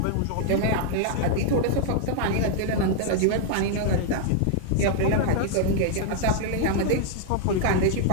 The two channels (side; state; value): both; different; correlation 0.00